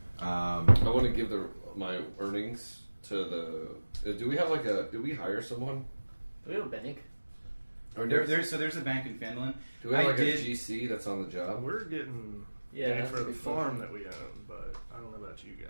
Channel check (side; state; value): both; inverted; correlation -1.00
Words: I want to give my earnings to the. Do we have do we hire someone? Do we have a bank? Or There's a bank in Phandeliver. do we have I a did- GC that's on the job? We're getting Yeah, paid that's for a the good farm question. that we own, but I don't know about you